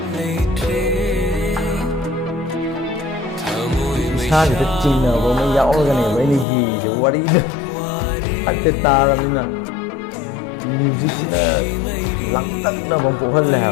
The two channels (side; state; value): right; drops out; at 6.5 s